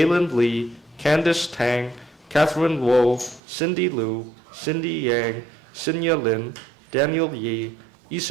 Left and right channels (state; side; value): drops out; left; at 3.4 s